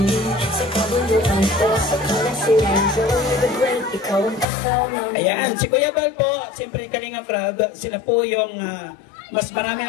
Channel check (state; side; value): drops out; right; at 4.5 s